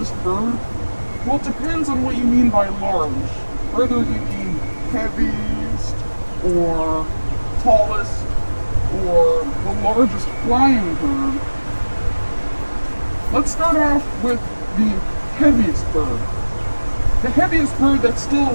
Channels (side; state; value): both; inverted; correlation -1.00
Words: bird? Well, it depends on what you mean by large. Whether you mean heaviest, or tallest, or the largest flying bird. Let's start off with the heaviest bird. The heaviest bird that's still